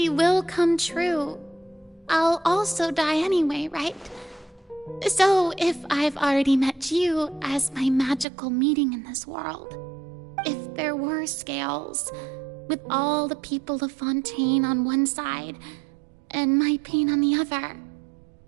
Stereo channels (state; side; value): drops out; left; at 8.2 s